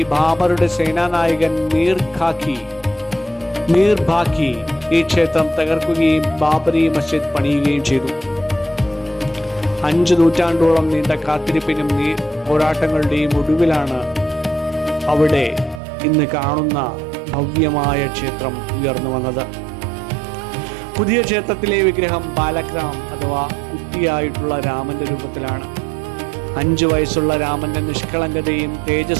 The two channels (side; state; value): left; drops out; at 15.8 s